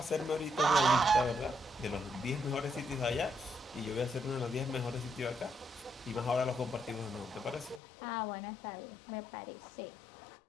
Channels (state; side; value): drops out; right; at 7.8 s